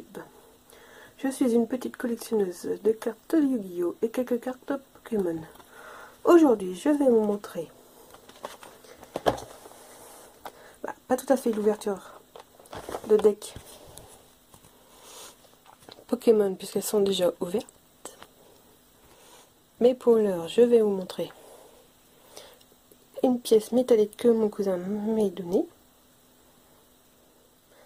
Je suis une petite collectionneuse de cartes de Yu-Gi-Oh! Et quelques cartes Pokémon. Aujourd'hui, je vais vous montrer, pas tout à fait l'ouverture de deck Pokémon puisqu'elles sont déjà ouvertes. Mais pour l'heure, je vais vous montrer une pièce métallique que mon cousin m'a donnée.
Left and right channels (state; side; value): identical; both; correlation 1.00